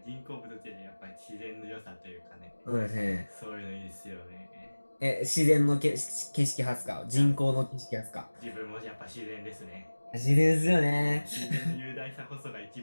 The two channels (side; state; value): both; inverted; correlation -1.00